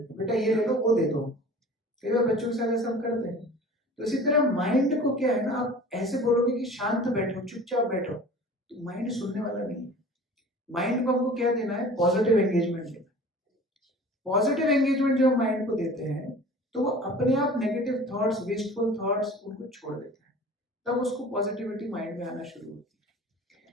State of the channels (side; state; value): both; normal; correlation 0.42